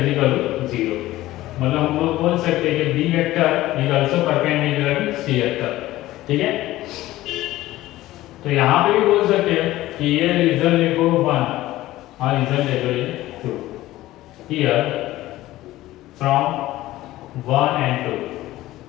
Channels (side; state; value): right; quieter; 16.2 dB